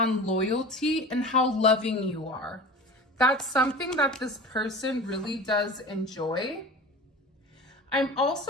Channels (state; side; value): normal; both; correlation 0.35